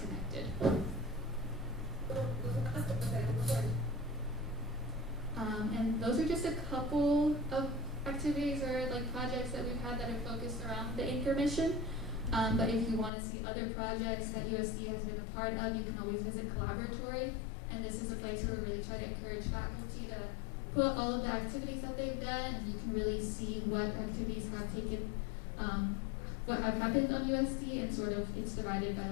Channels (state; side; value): drops out; right; at 13.1 s